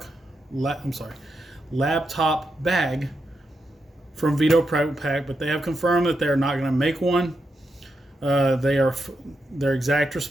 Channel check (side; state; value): both; normal; correlation 0.85